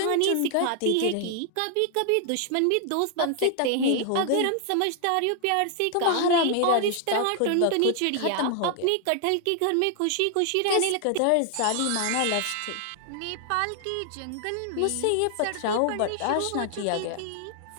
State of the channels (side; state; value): both; different; correlation 0.00